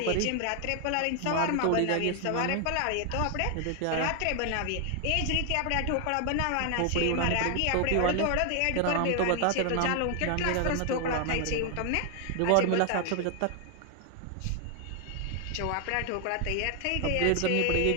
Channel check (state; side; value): different; both; correlation 0.00